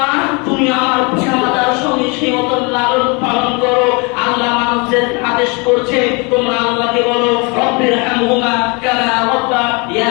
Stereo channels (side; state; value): right; quieter; 30.1 dB